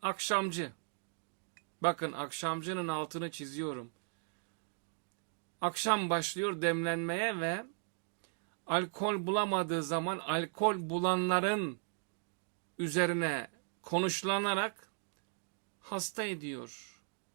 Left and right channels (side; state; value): left; silent; 53 dB below the other